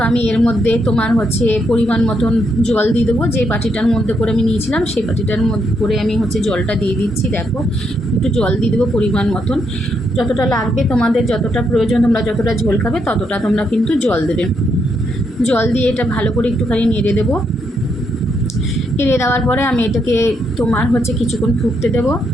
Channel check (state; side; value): normal; both; correlation 0.78